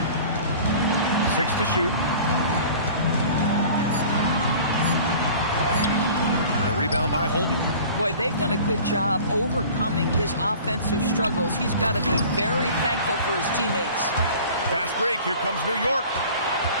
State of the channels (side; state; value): both; inverted; correlation -0.44